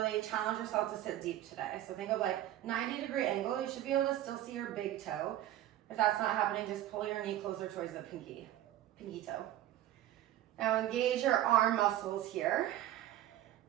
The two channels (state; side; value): quieter; left; 13.1 dB